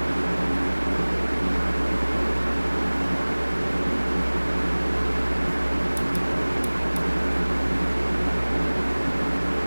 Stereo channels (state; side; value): inverted; both; correlation -1.00